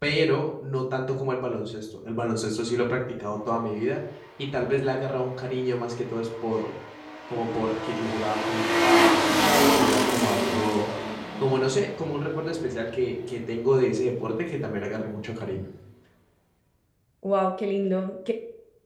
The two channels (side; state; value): both; identical; correlation 1.00